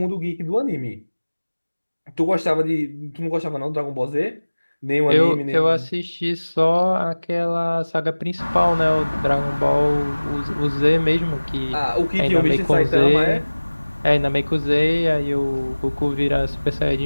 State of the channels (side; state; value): both; inverted; correlation -1.00